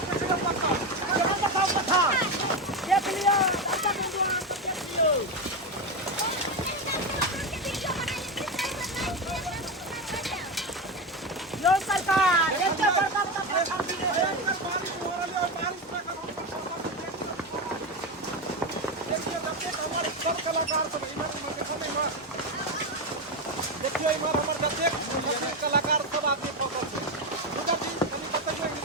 सरकार कलाकार सब देखियो इमर हमर जतेक कलाकार सब आदमी फोकस छै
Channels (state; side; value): normal; both; correlation 0.14